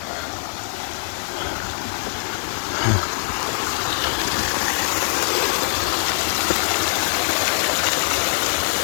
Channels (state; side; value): silent; right; 64 dB below the other